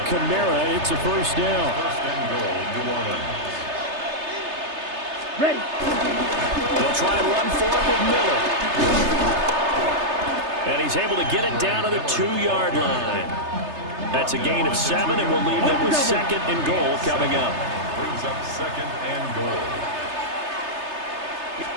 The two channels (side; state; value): left; late; 3.3 ms